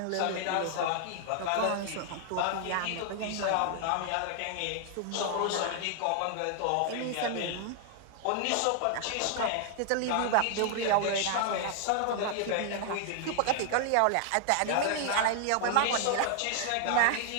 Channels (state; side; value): different; both; correlation 0.00